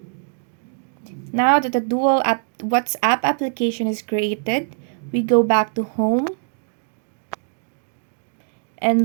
Now that the WhatsApp application is created, we go back to home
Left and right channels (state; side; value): silent; left; digital silence